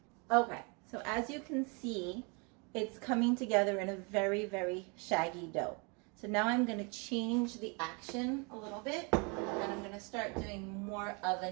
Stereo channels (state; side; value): quieter; left; 32.7 dB